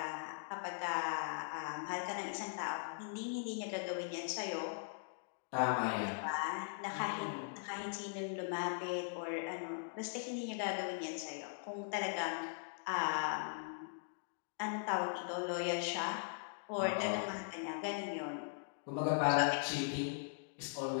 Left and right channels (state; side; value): silent; right; digital silence